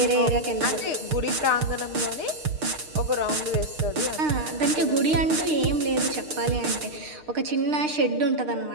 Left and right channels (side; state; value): left; late; 6.6 ms